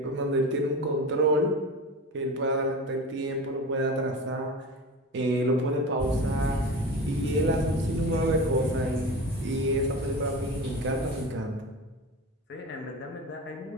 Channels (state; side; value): normal; both; correlation 0.30